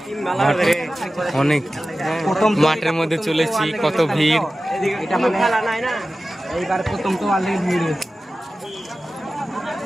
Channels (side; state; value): both; normal; correlation 0.95